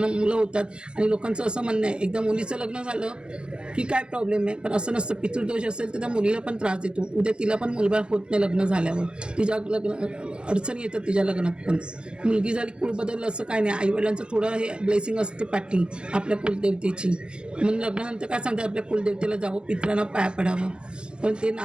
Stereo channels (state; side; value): late; left; 0.052 ms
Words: मुलं होतात. आणि लोकांचं असं म्हणणं आहे एकदा मुलीचं लग्न झालं की काय प्रॉब्लेम आहे, पण असं नसतं. पितृदोष असेल तर त्या मुलीला पण त्रास देतो, उद्या तिला पण मुलबाळ होत नाही लग्न झाल्यावर, तिच्या अडचणी येतात तिच्या लग्नात पण. मुलगी झाली कुळ बदललं असं काय नाही, आईवडिलांचं थोडं हे ब्लेसिंग असते पाठी आपल्या कुलदेवतेची. म्हणून लग्नानंतर काय सांगतात आपल्या कुलदेवतेला जावं, पित्रांना पाया पडावं. पण ते